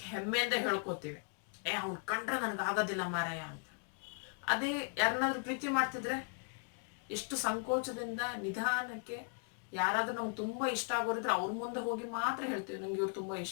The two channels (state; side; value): quieter; right; 38.8 dB